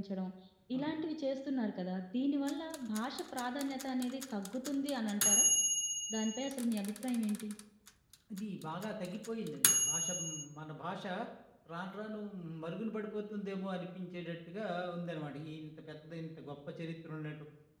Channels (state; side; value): identical; both; correlation 1.00